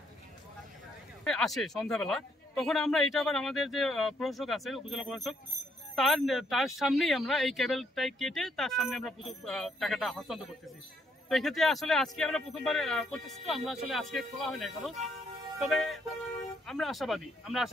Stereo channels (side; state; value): both; normal; correlation 0.71